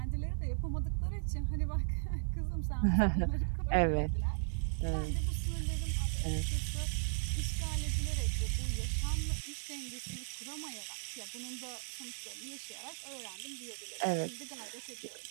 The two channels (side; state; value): left; silent; digital silence